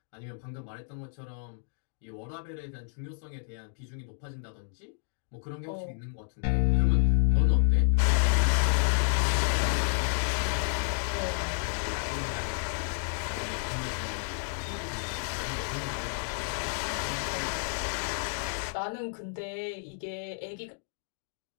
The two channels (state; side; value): silent; right; digital silence